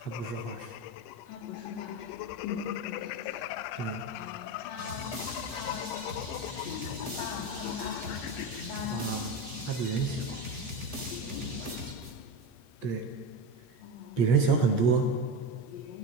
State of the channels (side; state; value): right; late; 8.4 ms